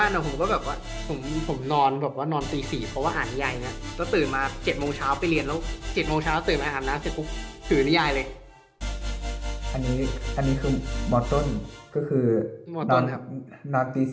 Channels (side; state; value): both; identical; correlation 1.00